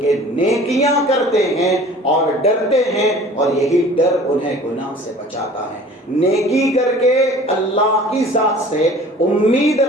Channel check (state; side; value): normal; both; correlation 0.46